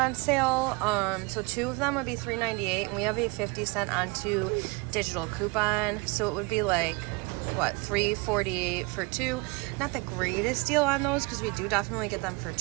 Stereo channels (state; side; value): quieter; left; 27.4 dB